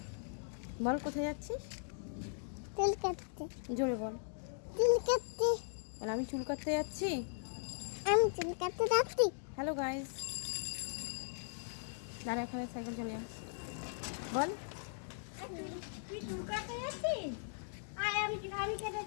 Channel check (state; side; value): silent; right; digital silence